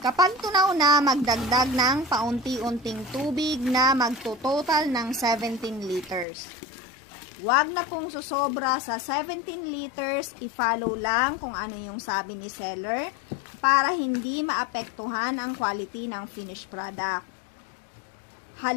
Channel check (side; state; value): right; drops out; at 6.2 s